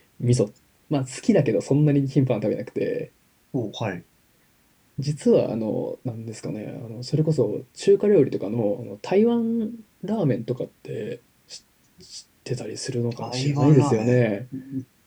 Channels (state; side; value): identical; both; correlation 1.00